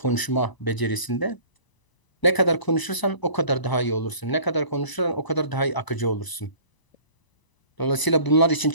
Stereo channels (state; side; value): late; right; 1.0 ms